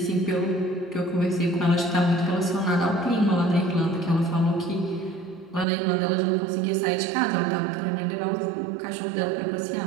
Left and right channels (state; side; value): drops out; left; at 5.7 s